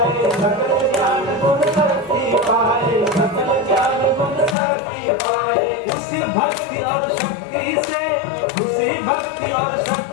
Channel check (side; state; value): right; drops out; at 4.5 s